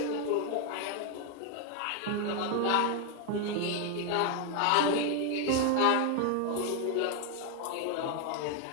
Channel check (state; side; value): different; both; correlation 0.01